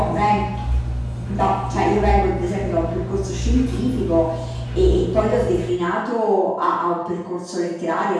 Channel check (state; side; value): identical; both; correlation 1.00